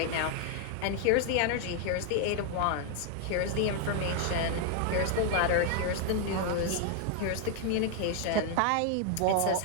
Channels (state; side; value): different; both; correlation 0.00